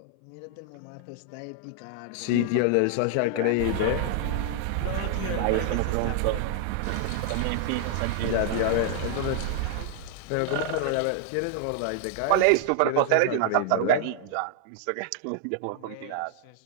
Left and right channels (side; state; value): both; different; correlation 0.00